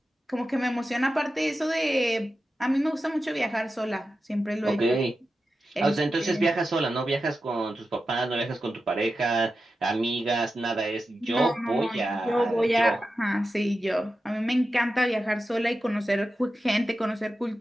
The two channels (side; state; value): both; normal; correlation 0.91